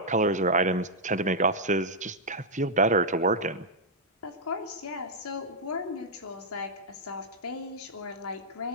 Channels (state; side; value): normal; both; correlation -0.06